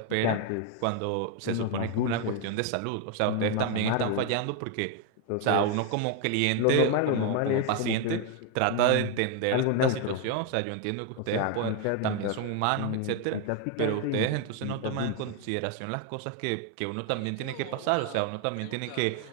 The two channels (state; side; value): different; both; correlation 0.01